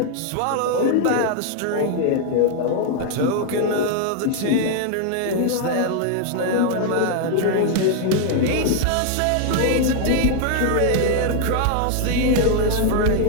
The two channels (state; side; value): different; both; correlation 0.00